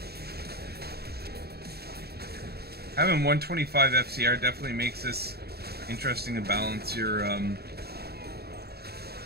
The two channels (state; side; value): late; left; 0.46 ms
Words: Having 125 FCR definitely makes this interesting to balance your